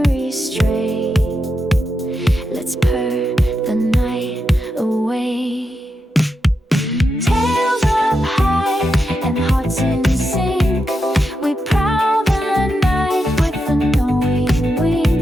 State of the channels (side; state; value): both; normal; correlation 0.86